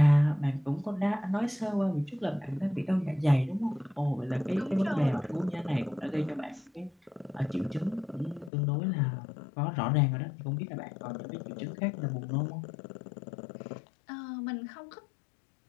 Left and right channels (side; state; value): right; drops out; at 8.5 s